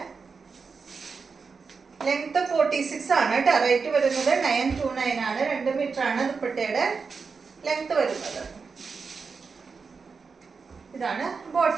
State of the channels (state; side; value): quieter; left; 5.1 dB